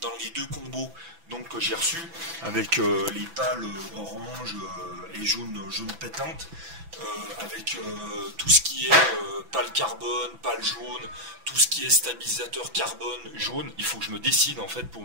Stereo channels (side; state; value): left; late; 6.0 ms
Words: les deux combos donc, que j'ai reçus, avec les pales orange et jaune pétante, avec tout ce qui est pale carbone, pale jaune, tout ce qui est stabilisateur carbone jaune. Il faut que je me décide en fait pour